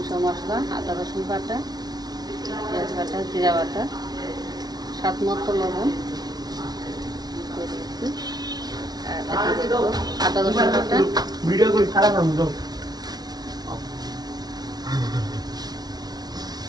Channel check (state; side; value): late; left; 0.19 ms